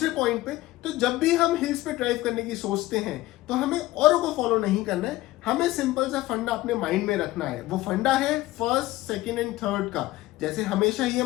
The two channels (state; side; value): quieter; right; 17.3 dB